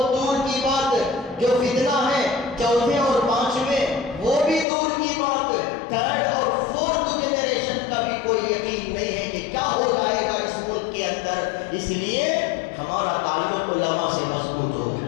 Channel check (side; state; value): right; drops out; at 4.7 s